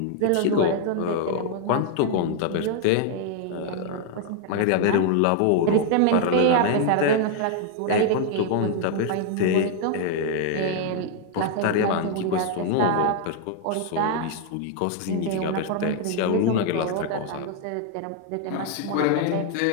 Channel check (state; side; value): different; both; correlation 0.00